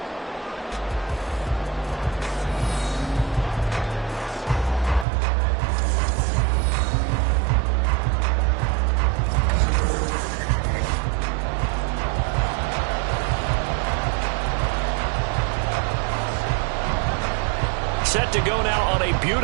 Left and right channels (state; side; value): drops out; left; at 5.1 s